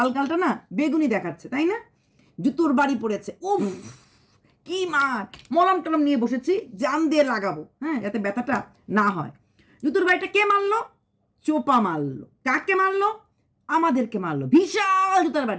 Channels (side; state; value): both; identical; correlation 1.00